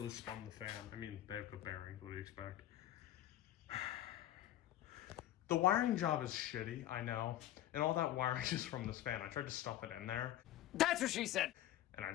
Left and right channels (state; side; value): quieter; right; 13.2 dB